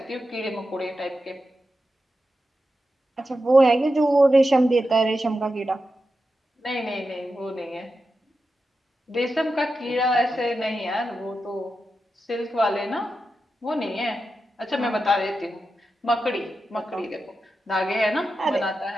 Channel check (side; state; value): both; normal; correlation 0.90